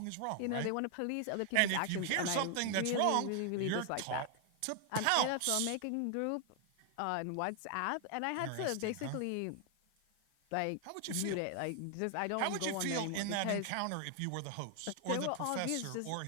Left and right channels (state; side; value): different; both; correlation 0.00